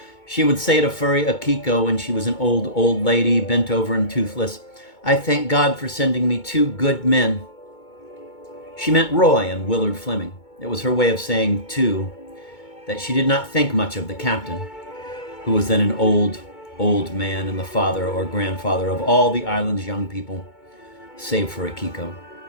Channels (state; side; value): late; right; 2.2 ms